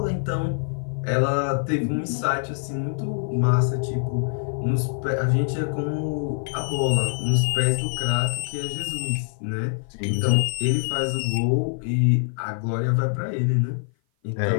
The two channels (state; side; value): silent; right; 55 dB below the other